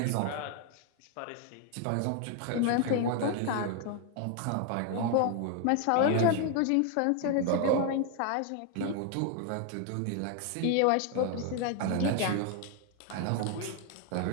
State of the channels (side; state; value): both; different; correlation 0.01